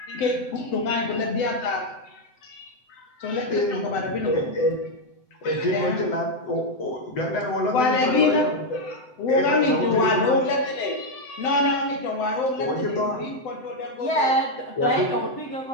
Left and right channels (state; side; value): late; right; 7.9 ms